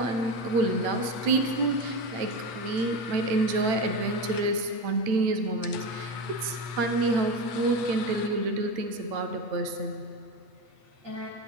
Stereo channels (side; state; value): left; late; 8.5 ms